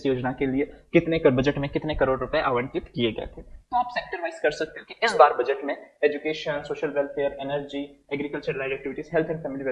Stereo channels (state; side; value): identical; both; correlation 1.00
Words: योजना के लिए कितने कर बजट में कितने करोड़ रुपए आवंटित किए गए थे। तो आप सेक्टर वाइज कर सकते हो कि इस बार बजट में education, social welfare, energy, agriculture related activities, health and family